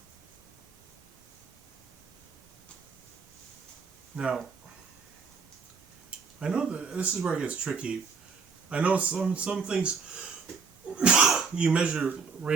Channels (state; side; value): quieter; left; 5.3 dB